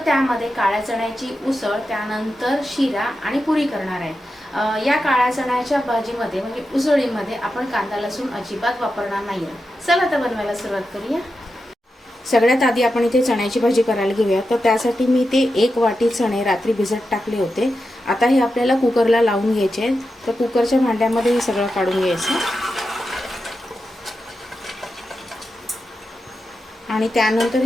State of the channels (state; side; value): normal; both; correlation 0.89